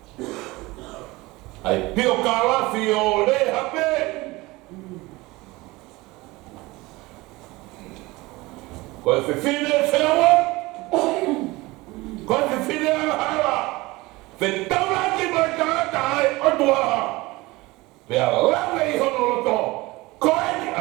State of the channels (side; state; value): left; quieter; 21.5 dB